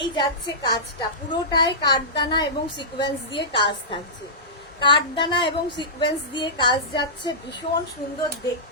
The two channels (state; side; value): normal; both; correlation -0.18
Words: যাচ্ছে কাজটা পুরোটাই কাঠদানা এবং সিকোয়েন্স দিয়ে কাজ থাকছে। কাঠদানা এবং সিকোয়েন্স দিয়ে কাজ যাচ্ছে, ভীষণ সুন্দর